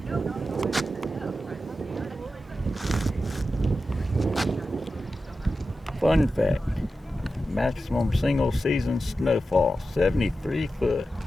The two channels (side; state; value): both; normal; correlation 0.92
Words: Fun fact, maximum single season snowfall, 73 foot.